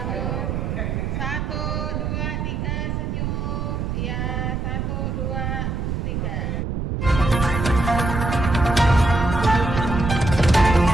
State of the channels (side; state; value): right; noise; rumble, 2 dB below the sound